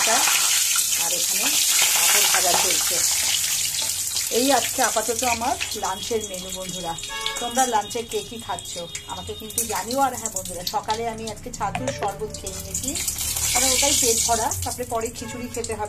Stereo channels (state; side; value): identical; both; correlation 1.00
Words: আর এখানে পাঁপড় ভাজা চলছে। এই আজকে আপাতত আমার লাঞ্চের মেনু বন্ধুরা। তোমরা লাঞ্চে কে কী খাচ্ছ আমাকে কিন্তু জানিও। আর হ্যাঁ বন্ধুরা, সকালে আমি আজকে ছাতুর শরবত খেয়ে নিয়েছি, কারণ ওটাই পেট ভরা, তারপরে পরে খিচুড়ি খেতে